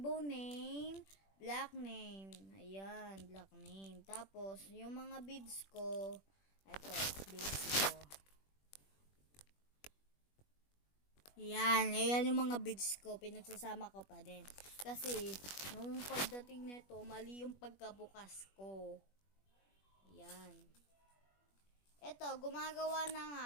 name, black name. Ayan, black name. Tapos, yung mga beads ko, ito, beads ko. Ayan yung mga beads ko. Pinagsasama ko pa din. Kasi, nung pagdating nito, mali yung pagkabukas ko. Ayan. Ito, gumagawa na nga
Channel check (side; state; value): right; late; 21 ms